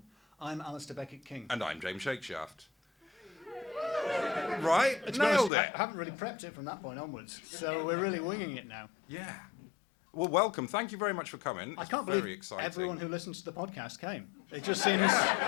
I'm Alistair Beckett-King. and I'm James Shakeshaft. Right. To be honest, Nailed it. I haven't really prepped it from that point onwards, so we're really winging it now. Yeah. Well, welcome. Thank you very much for coming. I It's can't very believe exciting. everyone who listens to the podcast came. It just seems...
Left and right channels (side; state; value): right; drops out; at 5.5 s